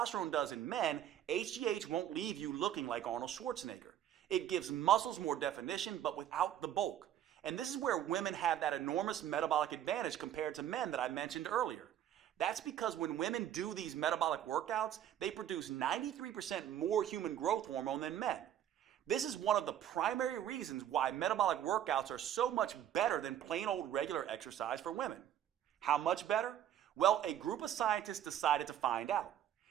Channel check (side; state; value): left; quieter; 10.8 dB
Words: does in men, HGH won't leave you looking like Arnold Schwarzenegger. It gives muscles more definition, but without the bulk. And this is where women have that enormous metabolic advantage compared to men that I mentioned earlier. That's because when women do these metabolic workouts, they produce 93% more human growth hormone than men. This is one of the primary reasons why metabolic workouts are so much better than plain old regular exercise for women. How much better? Well, a group of scientists decided to find out.